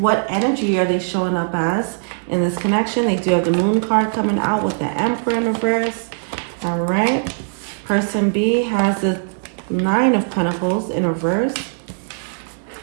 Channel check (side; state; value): left; silent; digital silence